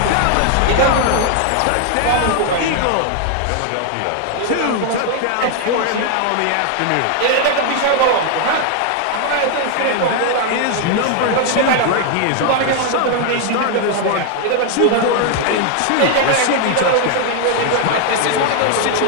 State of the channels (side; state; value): both; different; correlation 0.00